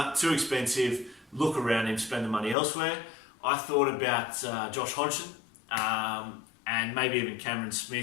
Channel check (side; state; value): right; drops out; at 2.6 s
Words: too expensive. Look around him, spend the money elsewhere. I thought about Josh Hodgson and maybe even Cameron